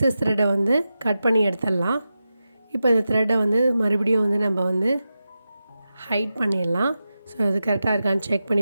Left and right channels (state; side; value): inverted; both; correlation -0.91